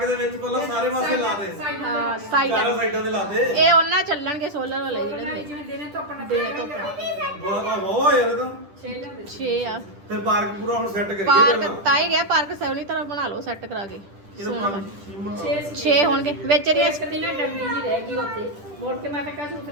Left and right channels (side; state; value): left; late; 10 ms